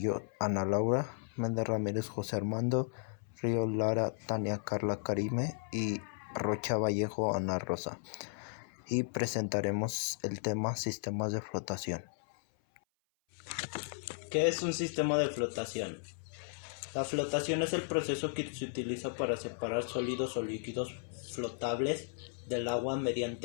Ana Laura, Méndez Ramírez, José Armando, Río Lara, Tania Carla Karime y Rocha Vallejo, Ana Rosa. Y presentaremos el tema sistemas de flotación. ¿Qué es un sistema de flotación? La flotación es el proceso que se utiliza para separar sólidos o líquidos flotables del agua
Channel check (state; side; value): silent; right; 54 dB below the other